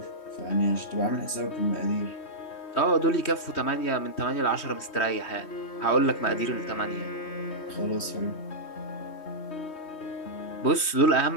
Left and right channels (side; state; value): right; late; 3.2 ms